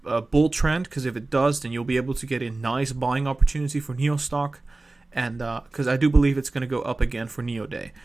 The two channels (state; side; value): quieter; left; 3.2 dB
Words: bull trend, because if it does, then you'll be able to get a nice buying opportunity for NIO stock, and because I do believe it's going to go up again for NIO Day.